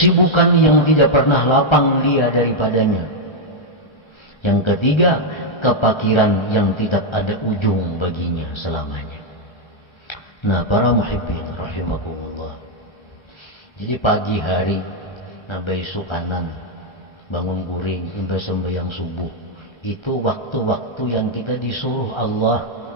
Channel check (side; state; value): right; late; 1.3 ms